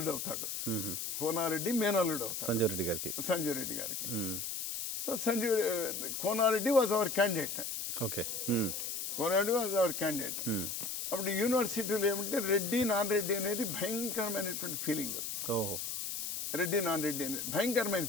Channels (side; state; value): left; noise; hiss, 4 dB below the sound